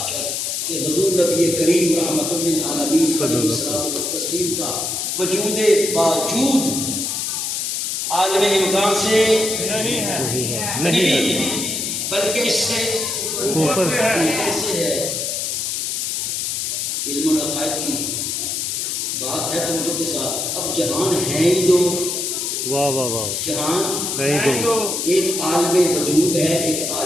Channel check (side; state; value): left; noise; hiss, 1 dB below the sound